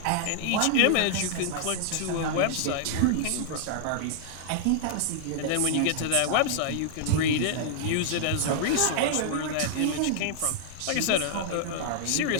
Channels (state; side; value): different; both; correlation -0.01